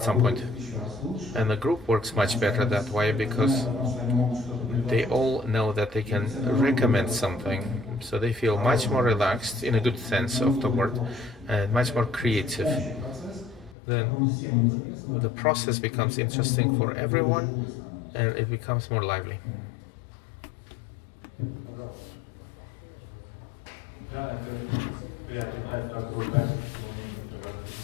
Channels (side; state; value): right; drops out; at 13.8 s